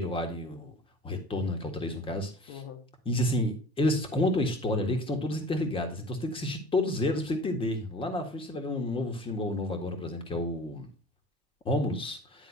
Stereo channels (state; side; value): normal; both; correlation 0.43